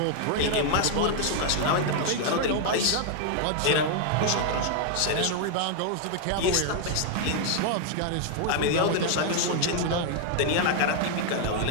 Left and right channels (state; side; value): different; both; correlation 0.00